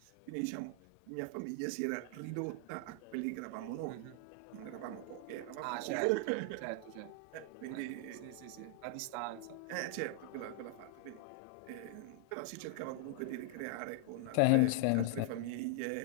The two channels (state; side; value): different; both; correlation 0.00